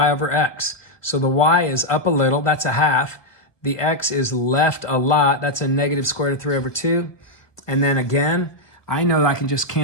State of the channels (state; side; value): late; right; 1.3 ms